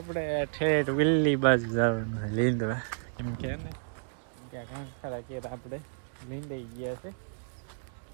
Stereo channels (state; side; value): silent; left; digital silence